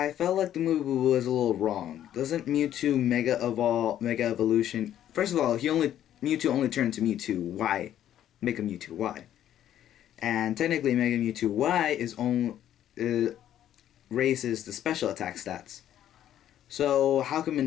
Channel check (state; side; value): quieter; right; 11.3 dB